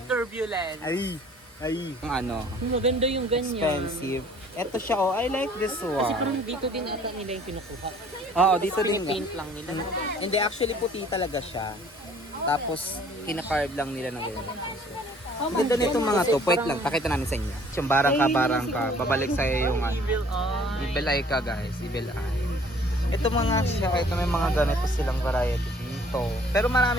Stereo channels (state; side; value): normal; both; correlation 0.55